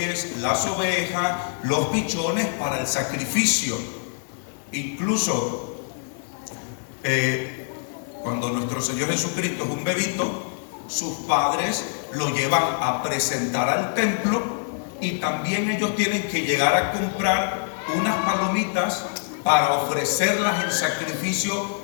las ovejas, los pichones para el sacrificio. Incluso cuando nuestro Señor Jesucristo es un bebito, sus padres lo llevan a presentar al templo y también ellos tienen que llegar a comprar unas palomitas para ofrecerlas en sacrificio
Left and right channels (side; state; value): right; silent; 58 dB below the other